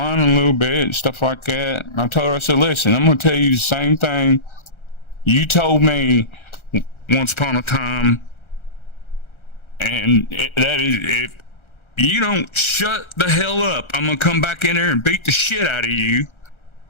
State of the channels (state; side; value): late; right; 1.3 ms